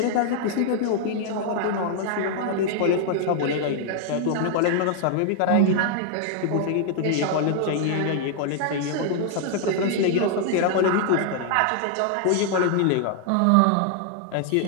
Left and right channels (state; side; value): different; both; correlation 0.00